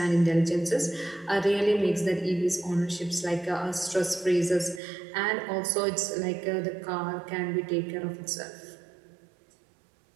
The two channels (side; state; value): left; drops out; at 4.8 s